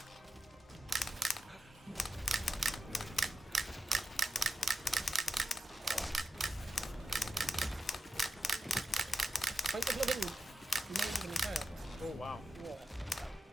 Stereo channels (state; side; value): normal; both; correlation 0.87